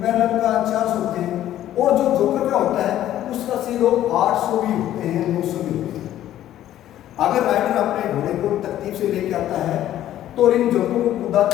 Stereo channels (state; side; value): quieter; right; 12.5 dB